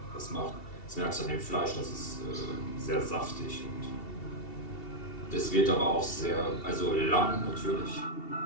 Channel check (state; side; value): late; right; 2.7 ms